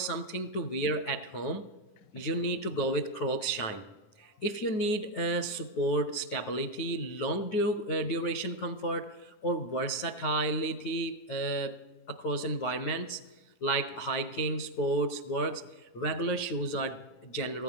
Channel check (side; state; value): right; late; 9.4 ms